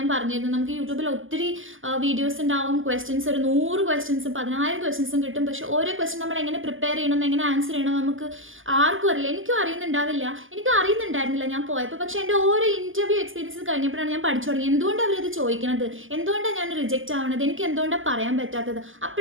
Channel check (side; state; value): left; late; 0.58 ms